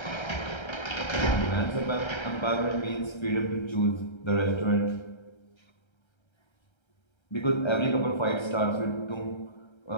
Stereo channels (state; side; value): late; right; 1.3 ms